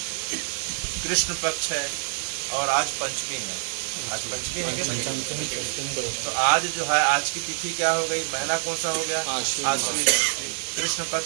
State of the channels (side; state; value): left; silent; digital silence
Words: कृष्ण पक्ष है और आज पंचमी है। आज पंचमी है क्या? तो आज जो है आज की तिथि क्या हो गई? महीना कौन सा हो गया? आश्विन। कृष्ण